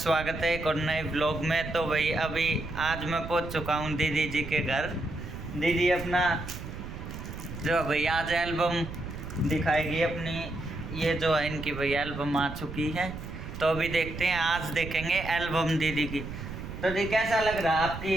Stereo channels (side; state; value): right; noise; rumble, 9 dB below the sound